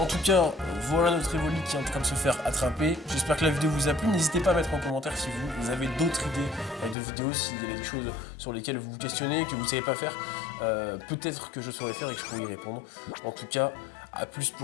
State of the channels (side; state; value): right; drops out; at 7.0 s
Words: tout cas, voilà notre Evoli qui est en train de se faire attraper. J'espère que la vidéo vous a plu. N'hésitez pas à mettre en commentaire si vous avez d'autres idées de vidéos, s'il y a des choses sur lesquelles vous vous questionnez, que vous ne savez pas faire. Peut-être que je saurais faire et que je pourrais y répondre. En tout cas, à plus